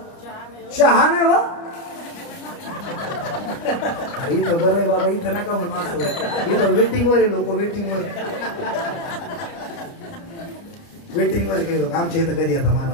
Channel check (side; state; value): right; late; 29 ms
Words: चहा नाही. हो अरे इथं बरं आहे बाबा, इथं नका म्हणून असं. इथं वेटिंग वर आहे लोक, वेटिंग वर काही लोक. आमच्या इथं कधी येतात